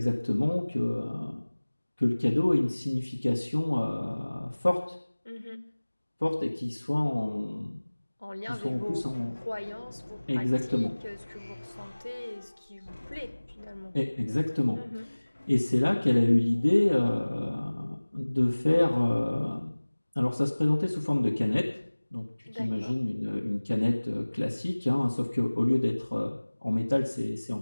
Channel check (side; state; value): both; inverted; correlation -1.00